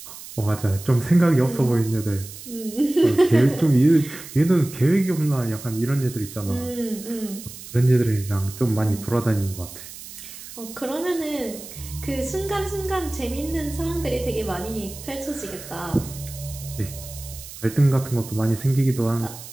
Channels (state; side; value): noise; right; hiss, 14 dB below the sound